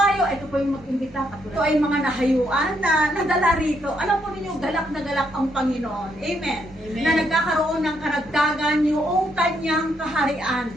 Ito po yung mag-imbita. Ito ay mga nahayuan na nadala rito. Alam po ninyo, galak na galak ang Panginoon. Amen. Amen. Na nagkakaroon ng karagdagan yung kanyang kaharian.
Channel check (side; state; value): both; normal; correlation 0.75